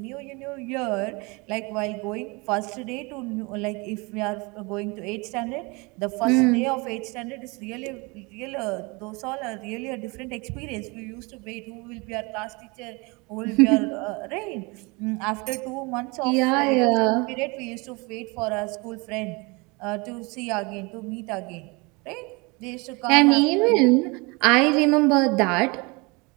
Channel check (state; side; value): quieter; left; 27.5 dB